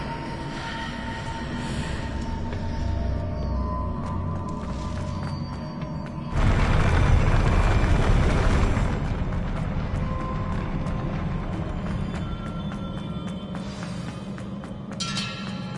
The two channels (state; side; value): identical; both; correlation 1.00